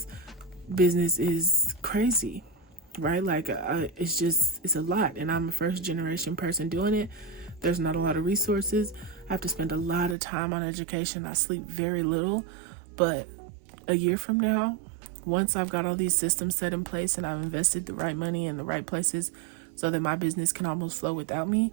business is crazy, right? Like, it's a lot, and I'm a first generation person doing it. There's not a lot of resources. I have to spend a lot of time on education. I sleep very little, but a year from now, once I've got all these systems set in place and I've invested the right money in the right places so that my business can almost flow without me,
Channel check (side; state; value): left; drops out; at 10.2 s